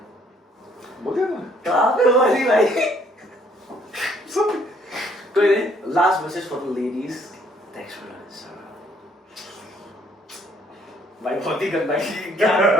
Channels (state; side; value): normal; both; correlation 0.65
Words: बोल दिया ना? कहाँ पे बोली भाई? कोई नहीं, last message for the ladies. Thanks for this. भाई बहुत ही गंदा, क्या मैंने